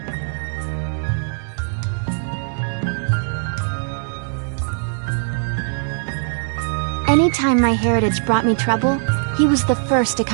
Anytime my heritage brought me trouble, he was the first to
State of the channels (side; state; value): left; silent; 65 dB below the other